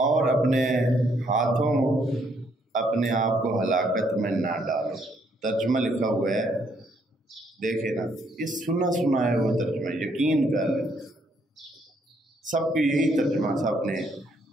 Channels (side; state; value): both; normal; correlation 0.70